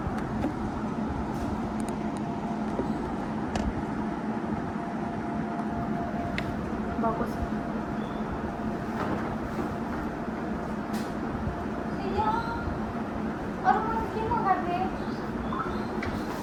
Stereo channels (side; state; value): both; identical; correlation 1.00